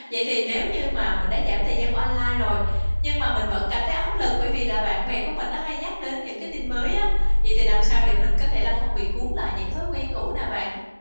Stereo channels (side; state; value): both; inverted; correlation -1.00